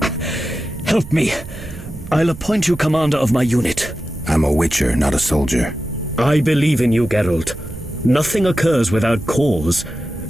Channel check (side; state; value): right; noise; rumble, 14 dB below the sound